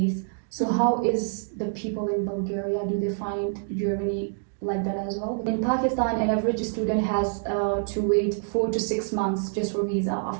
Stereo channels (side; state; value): left; silent; digital silence